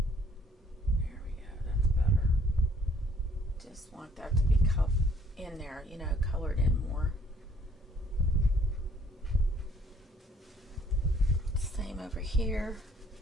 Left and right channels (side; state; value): both; normal; correlation 0.61